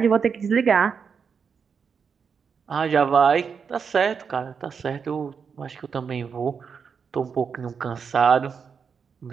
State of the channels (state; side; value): quieter; left; 6.2 dB